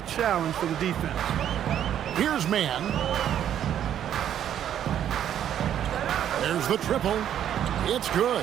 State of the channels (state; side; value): quieter; left; 10.2 dB